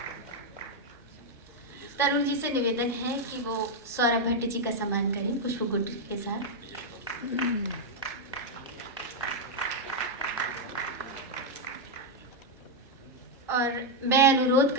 तरुण जी से निवेदन है कि वो सौरभ भट्ट जी का सम्मान करें पुष्पगुच्छ के साथ। और मैं अनुरोध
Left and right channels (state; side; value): normal; both; correlation 0.00